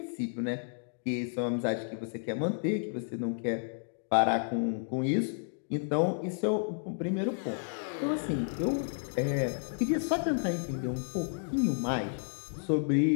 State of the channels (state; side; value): silent; right; digital silence